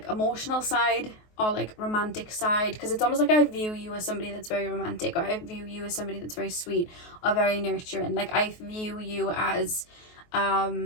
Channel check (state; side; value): late; right; 23 ms